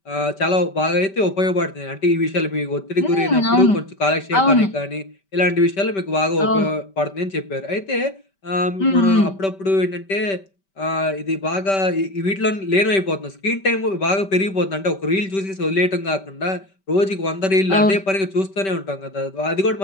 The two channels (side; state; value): right; late; 5.2 ms